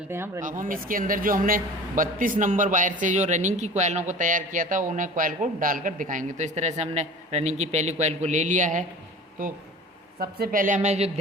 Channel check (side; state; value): both; normal; correlation 0.39